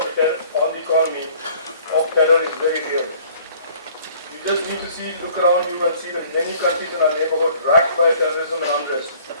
the economy of terror is very real. You just need to look around you and see that many countries in our neighborhood racked by terrorism and unrest,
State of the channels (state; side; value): inverted; both; correlation -0.55